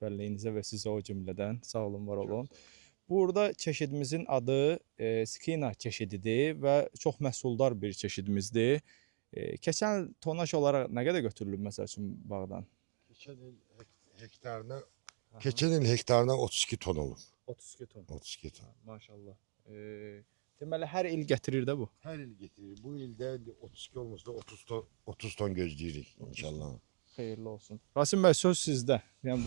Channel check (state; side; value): silent; left; digital silence